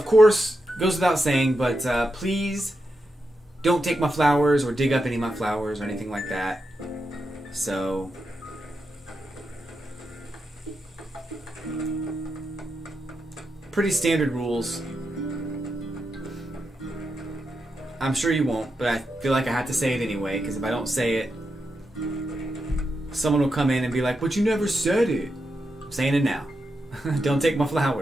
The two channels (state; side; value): normal; both; correlation 0.86